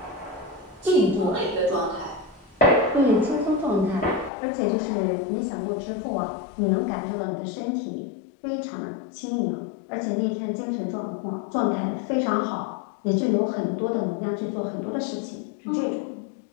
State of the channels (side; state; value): right; drops out; at 4.3 s